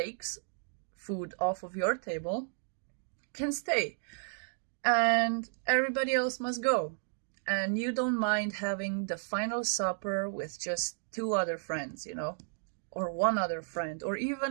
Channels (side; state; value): left; silent; digital silence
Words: food off of your table, can stay. And everybody else must go. And you don't mind having the final supper with just 2 other friends, you know, or 1 other friend, or